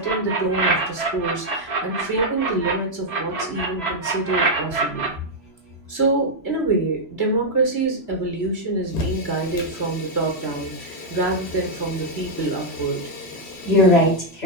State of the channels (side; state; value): right; late; 3.0 ms